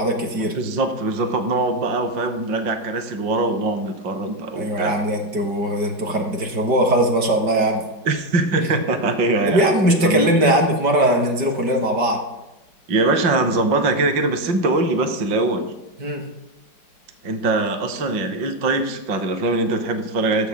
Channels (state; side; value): late; left; 5.1 ms